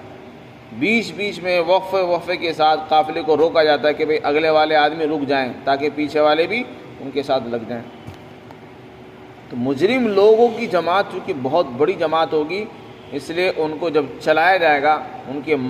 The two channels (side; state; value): both; identical; correlation 1.00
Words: بیچ بیچ میں وقفے کے ساتھ قافلے کو روکا جاتا ہے کہ بھئی اگلے والے آدمی رک جائیں تاکہ پیچھے والے بھی ان کے ساتھ لگ جائیں۔ تو مجرم لوگوں کی جماعت چونکہ بہت بڑی جماعت ہوگی، اس لیے ان کو جب چلایا جائے گا ان کے